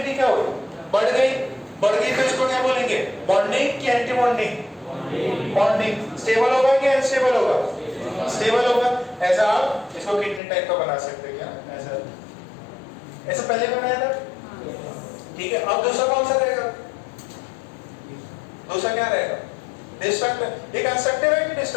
क्या होगी? बढ़ गई तो इसको क्या बोलेंगे? बॉन्डिंग की एंटी बॉन्डिंग? बॉन्डिंग। स्टेबल होगा कि अनस्टेबल होगा? स्टेबल होगा। ऐसा आप इसको कितने टाइप का बना सकते हैं? क्या ऐसा पहले बनाया था, ठीक है। अब दूसरा कौन सा रहेगा? दूसरा क्या रहेगा? डिस्ट्रक्टिव। ये कंस्ट्रक्टिव है कि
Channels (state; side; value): drops out; right; at 10.4 s